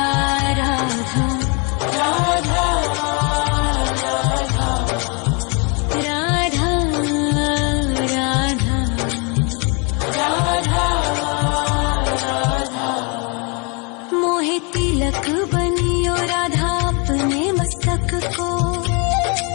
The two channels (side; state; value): right; quieter; 33.1 dB